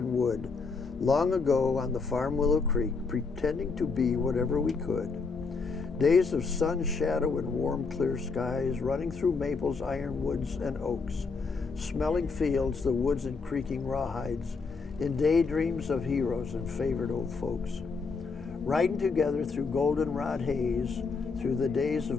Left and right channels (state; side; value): quieter; right; 4.6 dB